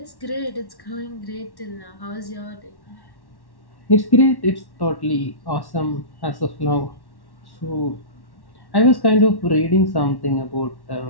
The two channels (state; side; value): late; right; 1.1 ms